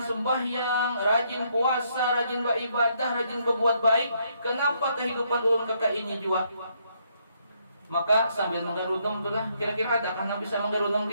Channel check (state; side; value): inverted; both; correlation -0.73